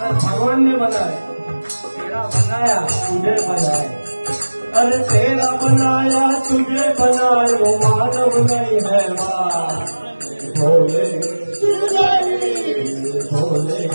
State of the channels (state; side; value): inverted; both; correlation -1.00